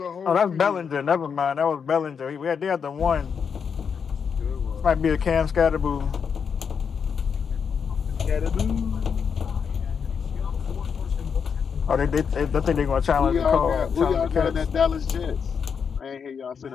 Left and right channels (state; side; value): quieter; right; 6.6 dB